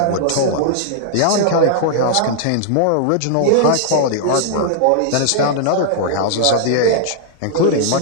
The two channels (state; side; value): different; both; correlation -0.01